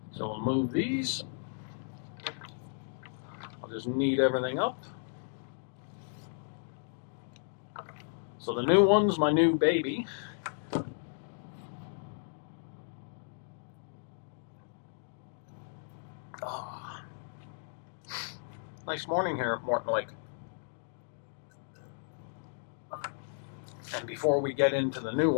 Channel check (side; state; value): right; silent; digital silence